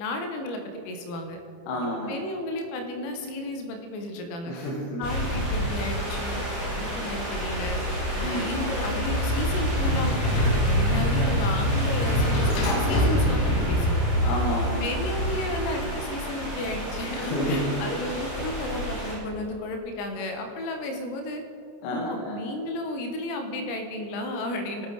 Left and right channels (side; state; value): right; late; 29 ms